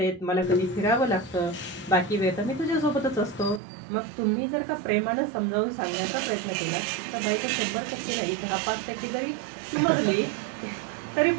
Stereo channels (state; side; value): drops out; left; at 3.6 s